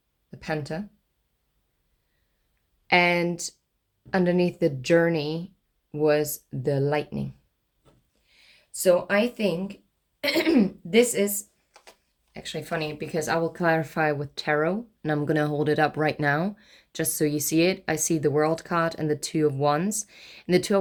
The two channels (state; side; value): identical; both; correlation 1.00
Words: the panther. And underneath the journey was the lightning. So I think this is actually funny, because I will clarify with tarot, and I'm going to hold it up right now just so you see it. I see the World card and the Two of Wands. And the Two